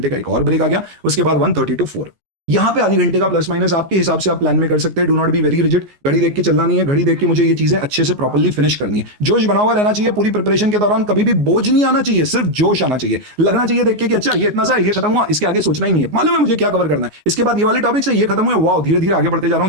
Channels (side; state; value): left; late; 14 ms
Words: का एक और ब्रेक आ गया, उसके बाद 1:30 to 4। यहाँ पे आधी घंटे का प्लस माइनस आपके हिसाब से आप प्लान में कर सकते हैं। Do not be very rigid, घड़ी देख के चलना नहीं है, घड़ी देख के मुझे ये चीजें अच्छे से प्रॉपर्ली फिनिश करनी है। जोश बना हुआ रहना चाहिए पूरी प्रिपरेशन के दौरान, कभी भी बोझ नहीं आना चाहिए, सिर्फ जोश आना चाहिए। लगना चाहिए देख के कि अच्छा ये इतना सा ये खत्म हुआ, इसके आगे सोचना ही नहीं है, मालूम है मुझे क्या कवर करना है। इसके बाद ये वाले टॉपिक से ये खत्म हुए, वाह धीरे धीरे आगे बढ़ते जा रहा